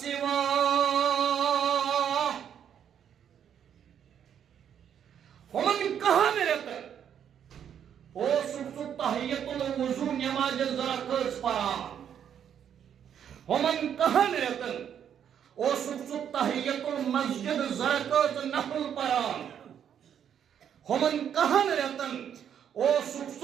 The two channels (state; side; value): quieter; left; 8.9 dB